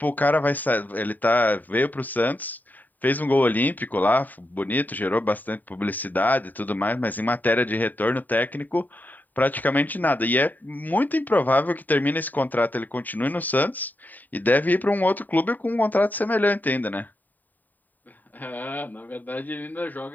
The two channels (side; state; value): right; late; 0.086 ms